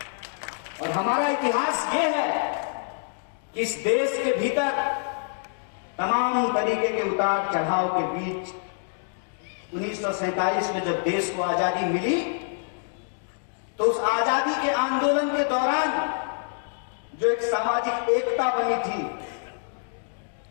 और हमारा इतिहास ये है कि इस देश के भीतर तमाम तरीके के उतार चढ़ाव के बीच 1947 में जब देश को आजादी मिली तो उस आजादी के आंदोलन के दौरान जो एक सामाजिक एकता बनी थी,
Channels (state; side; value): silent; right; digital silence